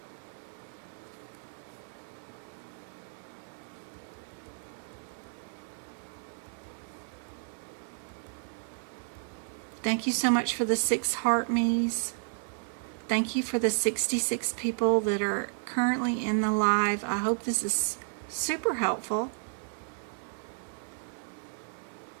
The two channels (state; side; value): silent; left; digital silence